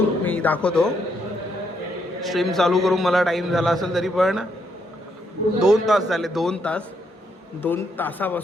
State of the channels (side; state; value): both; normal; correlation 0.75